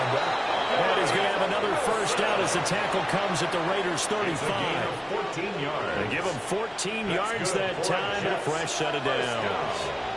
out. And he's going to have another 1st down as the tackle comes at the Raiders' 35. 14 yards. They give him 14 yards that time and a fresh set of downs.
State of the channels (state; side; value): identical; both; correlation 1.00